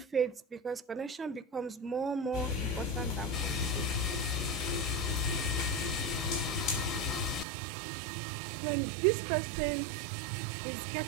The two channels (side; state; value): left; drops out; at 7.5 s